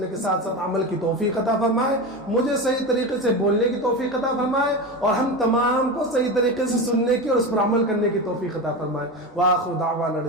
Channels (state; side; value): normal; both; correlation 0.22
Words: کے ساتھ ساتھ عمل کی توفیق عطا فرمائے، مجھے صحیح طریقے سے بولنے کی توفیق عطا فرمائے، اور ہم تمام کو صحیح طریقے سے سننے کی اور اس پر عمل کرنے کی توفیق عطا فرمائے۔ وآخر دعوانا